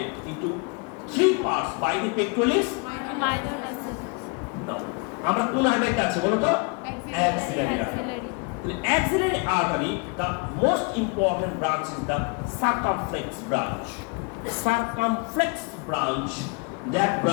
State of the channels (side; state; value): right; quieter; 32.4 dB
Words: into three parts by the pectoralis minor muscle. Now, আমরা কোন artery আছে বলো তো? Axillary artery. The axillary artery, the most important branch is the circumflex branch. That